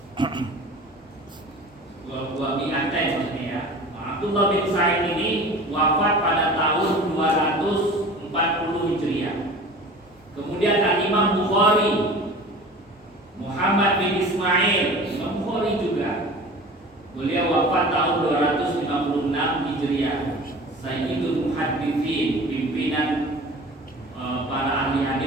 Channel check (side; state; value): both; normal; correlation 0.40